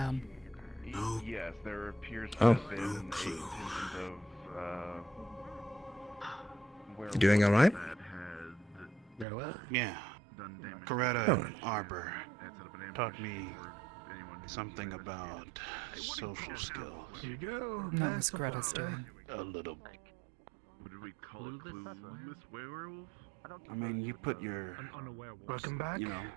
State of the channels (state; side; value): drops out; left; at 9.2 s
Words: Yes, there appears to Oh, have been no a clue. instance of You doing all right? that had Yeah. done damage. Coretta Oh. and Arbor and set up an ambush taught me for anyone who something tried to about social skills. Here you go. No, it was Greta's doing. A little. What did we call it? Clueless werewolf? I mean, you put your, An unaware wolf. Welcome back. you know,